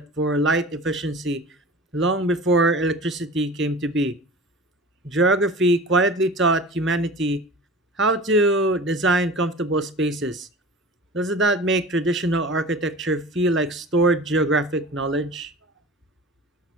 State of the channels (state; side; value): normal; both; correlation 0.37